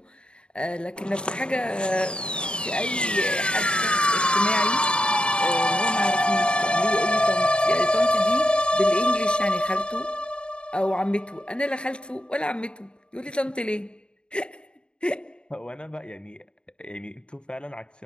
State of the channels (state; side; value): late; right; 0.052 ms